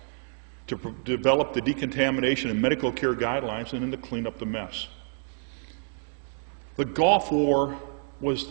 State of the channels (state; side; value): silent; left; digital silence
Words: to develop the decontamination and medical care guidelines, and then to clean up the mess. The Gulf War was